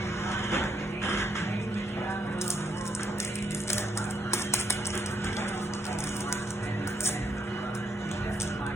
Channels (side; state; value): both; normal; correlation 0.77